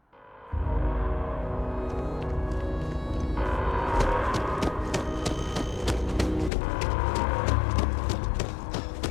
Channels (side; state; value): right; drops out; at 6.5 s